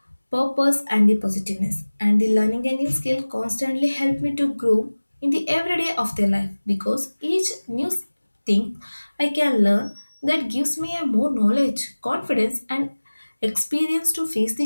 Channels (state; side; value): inverted; both; correlation -1.00